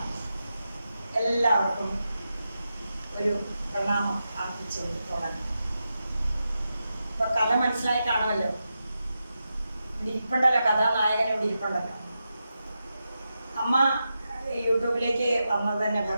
എല്ലാവർക്കും ഒരു പ്രണാമം അർപ്പിച്ചുകൊണ്ട് തുടങ്ങാം. ഇപ്പൊ കഥ മനസ്സിലായി കാണുമല്ലോ. ഇവിടെ ഇരിപ്പുണ്ടല്ലോ, കഥാനായകൻ ഇവിടെ ഇരിപ്പുണ്ടല്ലോ. അമ്മ യൂട്യൂബിലേക്ക് വന്നത് തന്നെ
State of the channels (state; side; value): inverted; both; correlation -0.89